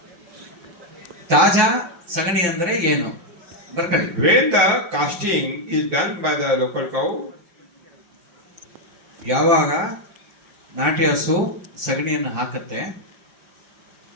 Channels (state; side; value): late; left; 5.8 ms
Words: ತಾಜಾ ಸಗಣಿ ಅಂದ್ರೆ ಏನು ಬರ್ಕೊಳ್ಳಿ. When the casting is done by the local cow, ಯಾವಾಗ ನಾಟಿ ಹಸು ಸಗಣಿಯನ್ನು ಹಾಕುತ್ತೆ,